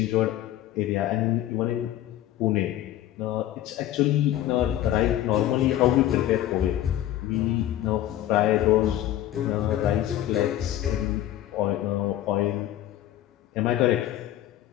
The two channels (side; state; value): right; quieter; 13.0 dB